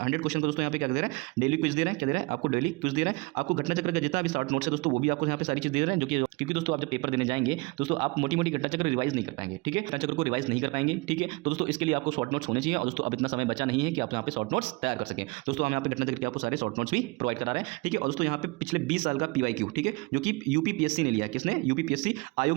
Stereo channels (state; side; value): quieter; left; 26.3 dB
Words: क्वेश्चन का दोस्तों यहाँ पे क्या दे रहे हैं? डेली क्विज दे रहे हैं। क्या दे रहे हैं? आपको डेली क्विज दे रहे हैं। आपको घटना चक्र का जितना भी शॉर्ट नोट्स है दोस्तों, वो भी आपको यहाँ पे सारी चीज दे रहे हैं, जो कि क्योंकि दोस्तों आप जब पेपर देने जाएंगे दोस्तों, आप मोटी मोटी घटना चक्र रिवाइज नहीं कर पाएंगे, ठीक है, घटना चक्र को रिवाइज नहीं कर पाएंगे, ठीक है। तो दोस्तों इसके लिए आपको शॉर्ट नोट्स होने चाहिए। और दोस्तों अब इतना समय बचा नहीं है कि आप यहाँ पे शॉर्ट नोट्स तैयार कर सकें दोस्तों। हम यहाँ पे घटना चक्र के आपको सारे शॉर्ट नोट्स भी प्रोवाइड करा रहे हैं, ठीक है। और दोस्तों यहाँ पे पिछले 20 साल का PYQ, ठीक है, जो कि UPPSC ने लिया है। किसने? UPPSC